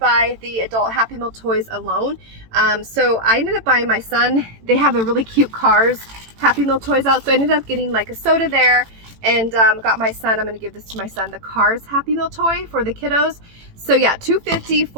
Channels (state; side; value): late; left; 18 ms